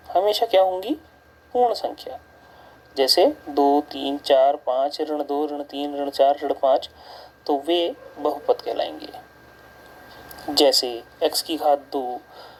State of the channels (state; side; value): identical; both; correlation 1.00